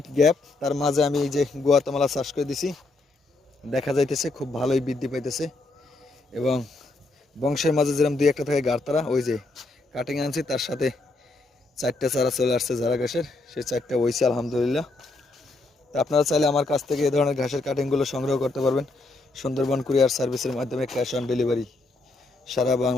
গ্যাপ, তার মাঝে আমি এই যে গুয়াতেমালা চাষ করে দিছি। দেখা যাইতেছে খুব ভালোই বৃদ্ধি পাইতেছে, এবং বংশের মাঝে যেরকম দুই একটা থাকে গাড়তারা, ওই যে কাটিং আনছি তার সাথে 4টা চারা চলে আসছে যারা ঘাসের, সেই 4টা হয়েছে আলহামদুলিল্লাহ। তা আপনারা চাইলে আমার কাছ থেকে এই ধরনের ঘাসের কাটিংগুলো সংগ্রহ করতে পারবেন। সুন্দরবন কুরিয়ার সার্ভিসের মাধ্যমে ক্যাশ অন ডেলিভারি সারা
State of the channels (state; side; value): quieter; right; 3.1 dB